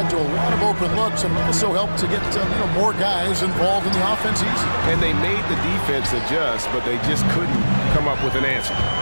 to a lot of open looks and also helped to get more guys involved in the offense easy. And they made the defense adjust, but they just couldn't come up with an answer.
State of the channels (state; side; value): inverted; both; correlation -1.00